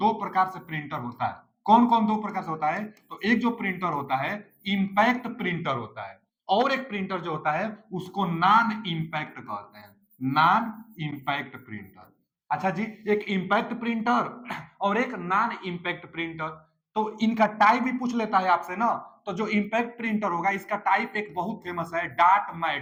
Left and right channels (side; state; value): both; identical; correlation 1.00